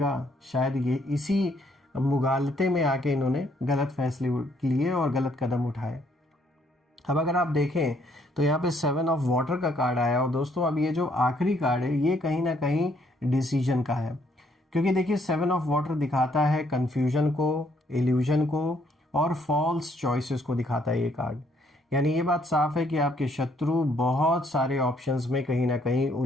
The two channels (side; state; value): both; normal; correlation 0.68